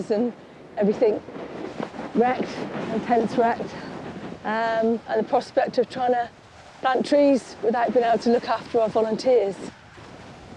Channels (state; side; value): identical; both; correlation 1.00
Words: and everything wrecked, and tents wrecked, and the prospect of trying to plant trees without being able to look after our volunteers.